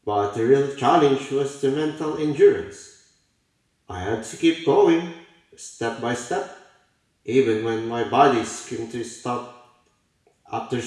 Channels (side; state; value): both; identical; correlation 1.00